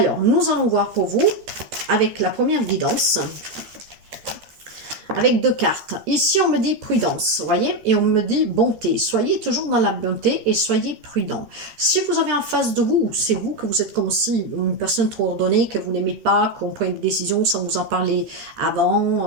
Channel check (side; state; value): left; late; 13 ms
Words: nous allons voir pour vous avec la première guidance. Avec deux cartes. Ici, on me dit prudence, vous voyez, et on me dit bonté. Soyez toujours dans la bonté et soyez prudent. Si vous avez en face de vous, c'est vous que vous êtes comme si une personne trop ordonnée, que vous n'aimez pas, qu'on prenne des décisions sans vous en parler